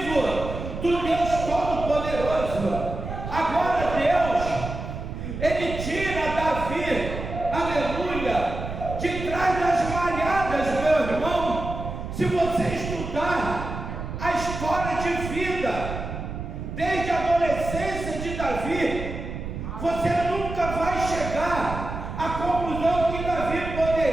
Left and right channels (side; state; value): right; noise; rumble, 7 dB below the sound